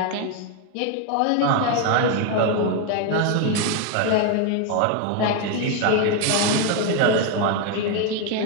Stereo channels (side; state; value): both; different; correlation 0.02